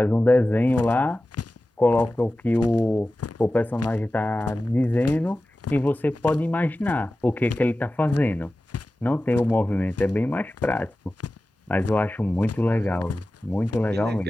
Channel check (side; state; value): both; normal; correlation 0.95